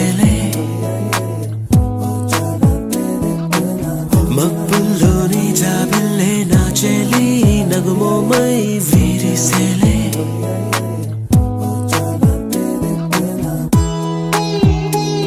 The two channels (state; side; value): identical; both; correlation 1.00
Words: మబ్బుల్లోని జాబిల్లే నా చెలి నగుమోమై వీరిసేలే